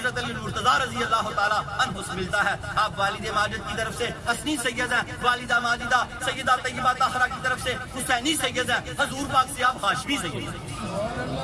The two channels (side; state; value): both; identical; correlation 1.00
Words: علی المرتضیٰ رضی اللہ تعالیٰ عنہ سے ملتا ہے۔ آپ والد ماجد کی طرف سے حسنی سید ہیں، والدہ ماجدہ سیدہ طیبہ طاہرہ کی طرف سے حسینی سید ہیں، حضور پاک سے آپ ہاشمی سید ہیں۔